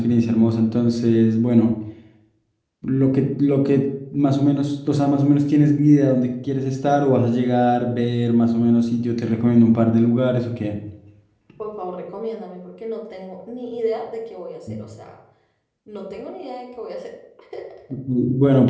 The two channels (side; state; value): both; identical; correlation 1.00